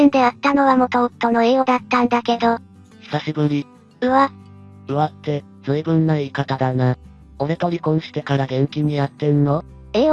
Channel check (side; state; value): both; identical; correlation 1.00